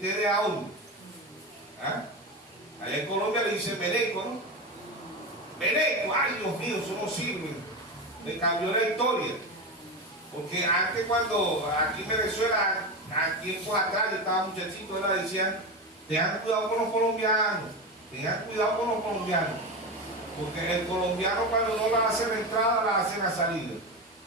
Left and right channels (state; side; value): normal; both; correlation 0.19